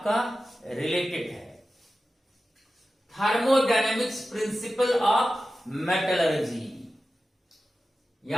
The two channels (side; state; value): both; normal; correlation 0.94